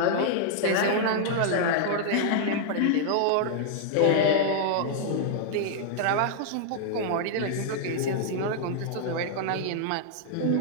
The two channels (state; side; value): different; both; correlation -0.01